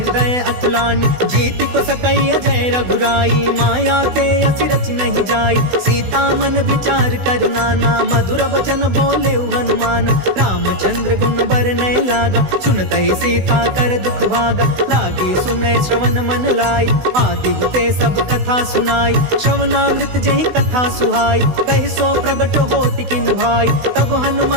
अकुलानी। जीति को सकई अजय रघुराई, माया ते असि रचि नहीं जाई। सीता मन विचार कर नाना, मधुर वचन बोले हनुमान। रामचंद्र गुण बरनय लागा, सुनतहि सीता कर दुख भागा। लागी सुनय श्रवण मन लाई, आदि हुते सब कथा सुनाई। श्रवणामृत जहि कथा सुहाई, कहि सो प्रगट होति किन भाई। तब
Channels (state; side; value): late; left; 16 ms